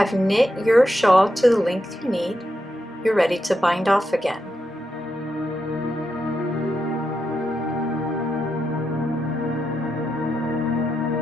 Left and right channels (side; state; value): both; normal; correlation 0.85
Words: knit your shawl to the length you need, you're ready to bind off again.